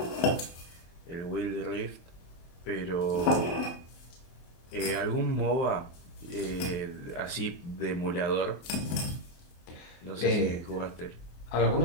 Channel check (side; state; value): right; late; 23 ms